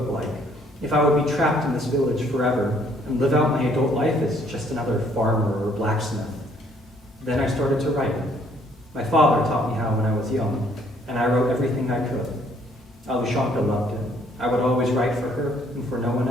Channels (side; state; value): both; normal; correlation 0.64